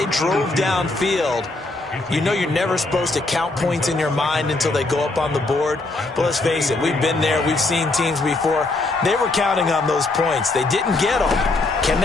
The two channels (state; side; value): quieter; right; 3.2 dB